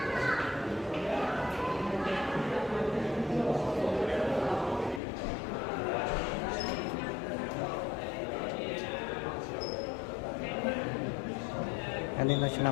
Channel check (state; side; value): drops out; right; at 5.0 s